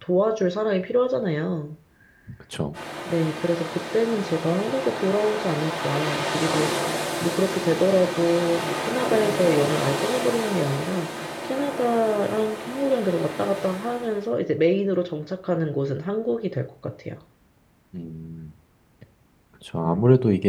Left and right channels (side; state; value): both; identical; correlation 1.00